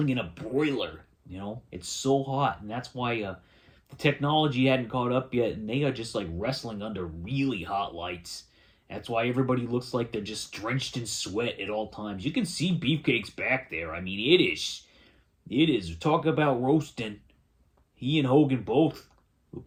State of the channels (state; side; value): identical; both; correlation 1.00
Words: in a broiler. You know, it's so hot, and that's why the technology hadn't caught up yet, and they are just like wrestling under really hot lights. That's why everybody looks like they're just drenched in sweat at all times. You can see Beefcake's back there. I mean, it is. Talk about roasting. He and Hogan both